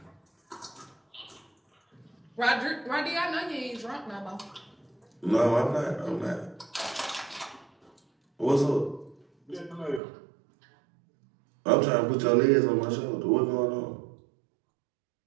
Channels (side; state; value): left; drops out; at 10.0 s